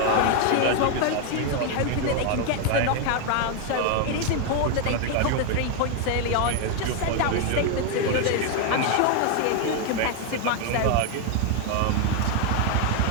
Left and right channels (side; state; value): both; different; correlation 0.01